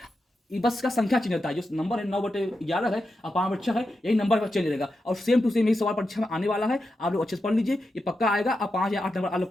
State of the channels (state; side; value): normal; both; correlation 0.88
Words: ये बस का संख्या चेंज होता है, जो नंबर है 9/11 है और 5/6 है, यही नंबर का चेंज रहेगा और सेम टू सेम यही सवाल परीक्षा में आने वाला है। आप लोग अच्छे से पढ़ लीजिए, ये पक्का आएगा, आप 5 या 8 नंबर आप लोग